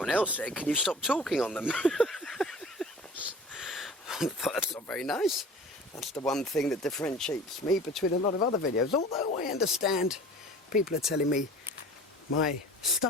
else said, can you stop talking on them? I thought that's not very nice. That's the one thing that differentiates me between a lot of other videos. Although I understand people are telling me my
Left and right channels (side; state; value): both; normal; correlation 0.43